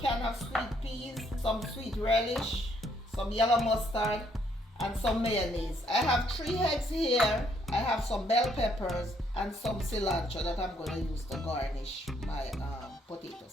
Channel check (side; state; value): both; normal; correlation 0.70